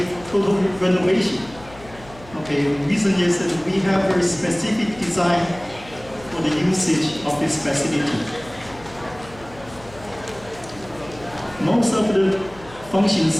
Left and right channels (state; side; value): noise; left; hum, 20 dB below the sound